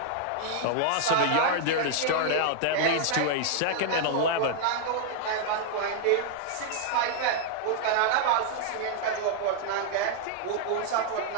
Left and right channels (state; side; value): different; both; correlation -0.01